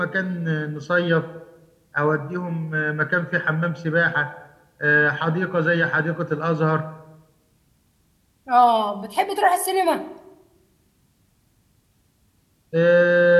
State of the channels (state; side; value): identical; both; correlation 1.00